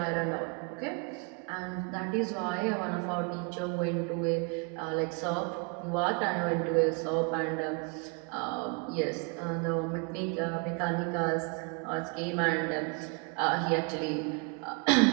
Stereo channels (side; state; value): left; quieter; 33.7 dB